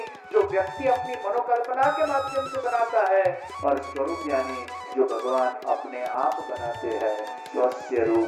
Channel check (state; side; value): identical; both; correlation 1.00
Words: जो व्यक्ति अपनी मनोकल्पना के माध्यम से बनाता है और स्वरूप यानी जो भगवान अपने आप बनाते हैं। स्वस्य